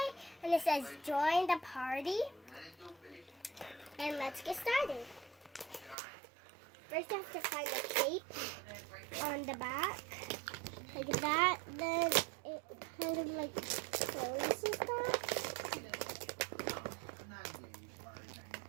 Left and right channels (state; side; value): drops out; left; at 6.0 s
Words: and it says join the party, and let's get started. First I have to find the cape on the back, like that, then it kind of like closes that.